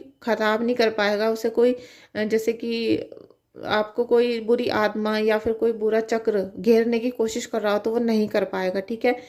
खराब नहीं कर पाएगा, उसे कोई जैसे कि आपको कोई बुरी आत्मा या फिर कोई बुरा चक्र घेरने की कोशिश कर रहा हो तो वो नहीं कर पाएगा, ठीक है।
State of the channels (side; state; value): both; identical; correlation 1.00